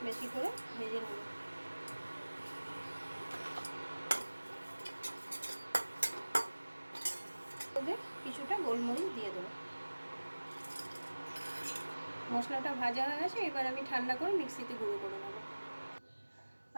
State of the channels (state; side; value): inverted; both; correlation -1.00